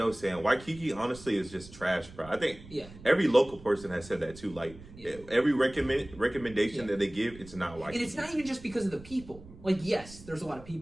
sand. Waikiki, honestly, is just trash, bro. I think every local person has said that too. Like every recommendation that they give, it's not Waikiki. And it's not even just because of the people. Like, yes, there's a lot of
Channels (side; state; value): right; noise; rumble, 18 dB below the sound